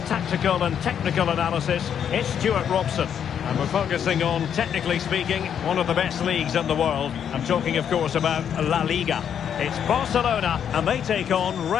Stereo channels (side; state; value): right; quieter; 8.5 dB